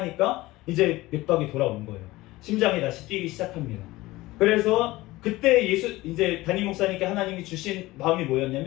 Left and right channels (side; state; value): right; quieter; 19.0 dB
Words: 이제 맥박이 돌아온 거예요. 심장이 다시 뛰기 시작합니다. 그래서 그때 이제 담임 목사님께 하나님이 주신 마음이